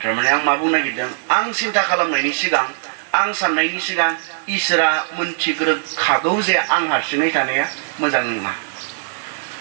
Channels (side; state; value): left; silent; 66 dB below the other